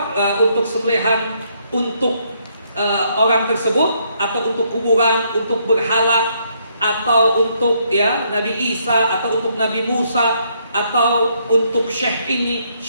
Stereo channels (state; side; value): inverted; both; correlation -0.72